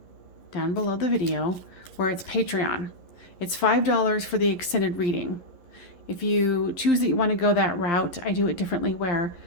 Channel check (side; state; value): right; late; 11 ms